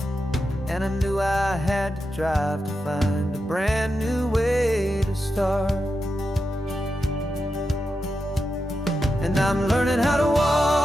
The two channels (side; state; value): both; normal; correlation 0.88